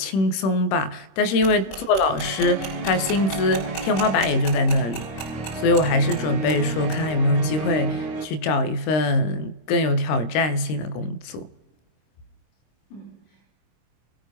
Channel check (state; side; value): late; right; 26 ms